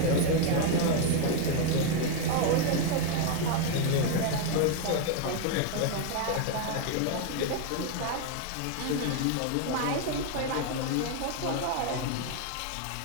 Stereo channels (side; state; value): both; different; correlation 0.01